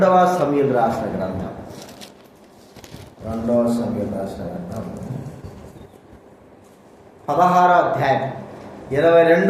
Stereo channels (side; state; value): both; identical; correlation 1.00